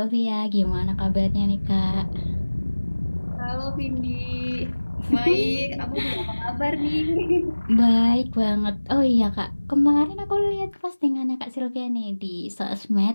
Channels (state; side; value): inverted; both; correlation -1.00